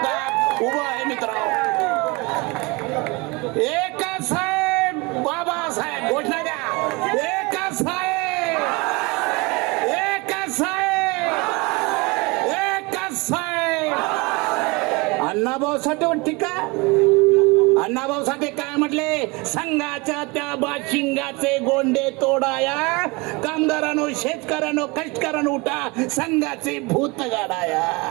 उभा आहे. मित्रांनो, एकच साहेब बाबासाहेब घोषणा द्या. एकच साहेब, एकच साहेब, एकच साहेब. अण्णाभाऊ साठे टीका. अण्णाभाऊ साठे काय म्हटले? संघाच्या त्या बाशिंगाचे गोंडे तोडाया, कामगारांनो शेतकऱ्यांनो कष्टकऱ्यांनो उठा, संघाचे भूत गाडाया.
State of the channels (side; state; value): left; quieter; 25.9 dB